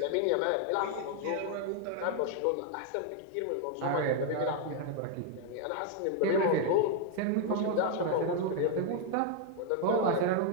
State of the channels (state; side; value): different; both; correlation 0.00